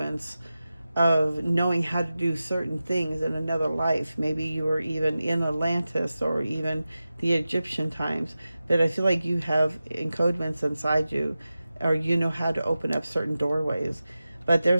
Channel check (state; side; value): inverted; both; correlation -0.94